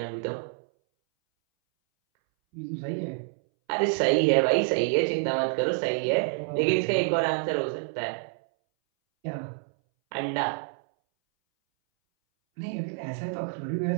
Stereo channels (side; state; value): left; silent; 60 dB below the other